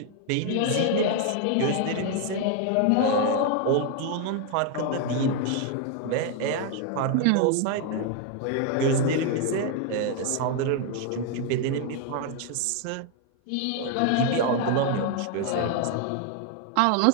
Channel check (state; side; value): different; both; correlation 0.00